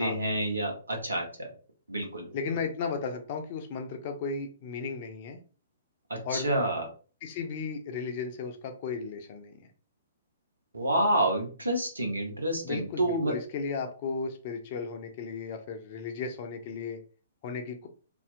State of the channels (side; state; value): both; inverted; correlation -0.55